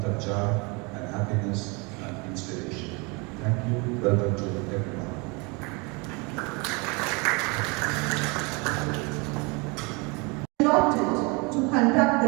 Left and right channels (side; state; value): left; quieter; 29.3 dB